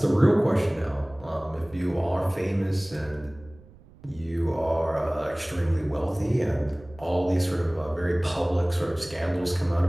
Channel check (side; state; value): right; noise; rumble, 23 dB below the sound